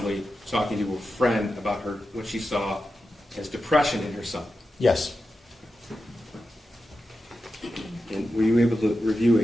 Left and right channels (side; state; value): both; normal; correlation 0.90